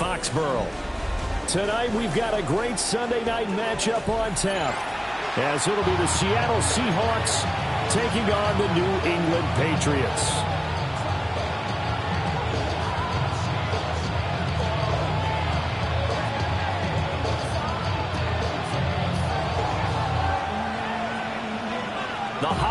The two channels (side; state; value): both; identical; correlation 1.00